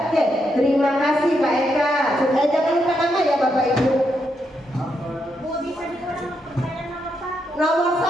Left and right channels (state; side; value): normal; both; correlation 0.80